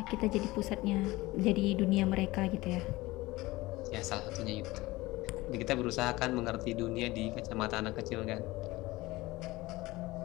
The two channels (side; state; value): right; quieter; 19.8 dB